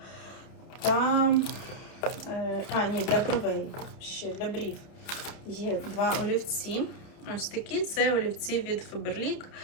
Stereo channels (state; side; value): late; right; 30 ms